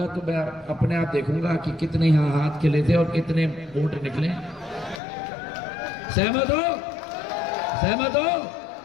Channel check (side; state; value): right; drops out; at 5.0 s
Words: तो मैं अपने आप देखूंगा कि कितने यहाँ हाथ खिले थे और कितने वोट निकले। सहमत हो? सहमत हो?